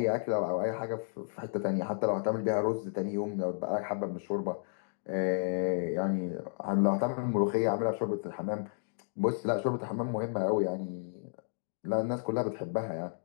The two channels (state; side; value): silent; right; digital silence